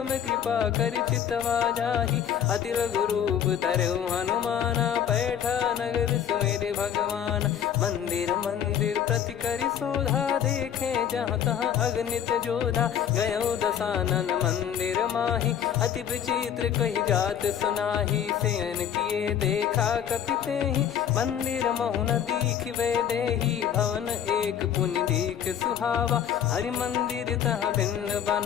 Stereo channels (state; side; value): quieter; right; 9.1 dB